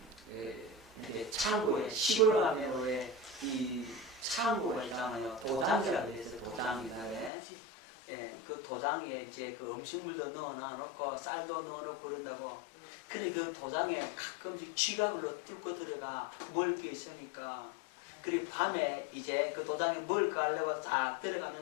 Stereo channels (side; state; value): right; drops out; at 7.3 s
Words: 이제 창고에, 시골 가면에 이 창고에 있잖아요. 도장이라고 해서 도장이다. 그 도장에 이제 그 음식물도 넣어놓고 쌀도 넣어놓고 그런다고. 그런데 그 도장에 가끔씩 쥐가 뚫고 들어가 먹을 게 있으니까. 그리고 밤에 이제 그 도장에 먹을 가려고 딱